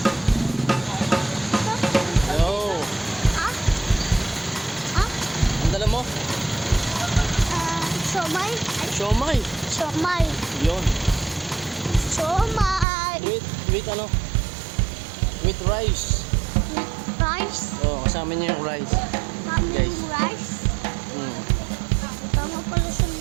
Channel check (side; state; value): left; drops out; at 12.9 s